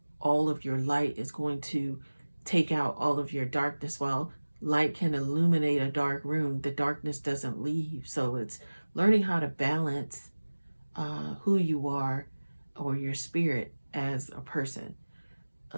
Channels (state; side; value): inverted; both; correlation -1.00